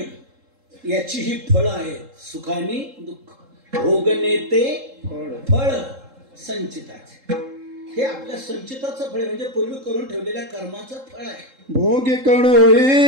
याची ही फळ आहे, सुखानी दुःख. भोगने ते फळ संचिताचे. हे आपल्या संचिताचं फळ म्हणजे पूर्वी करून ठेवलेल्या कर्माचं फळ आहे. भोगे कळो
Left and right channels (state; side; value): late; left; 3.7 ms